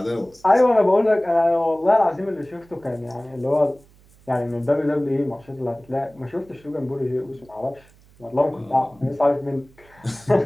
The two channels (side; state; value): right; noise; hum, 28 dB below the sound